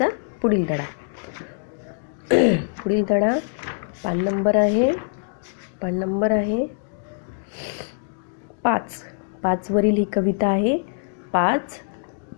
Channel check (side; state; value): right; silent; digital silence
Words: पुढील धडा. पुढील धडा पान नंबर आहे 5 वरील ही कविता आहे. 5